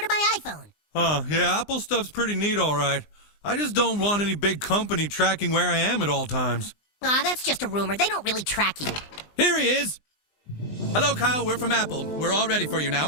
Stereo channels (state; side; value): late; right; 20 ms